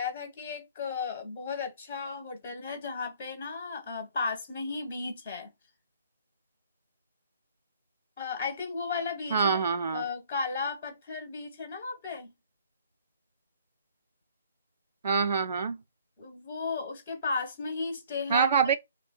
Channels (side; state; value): both; inverted; correlation -0.56